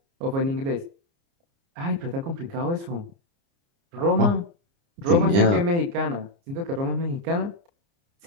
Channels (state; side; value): late; left; 29 ms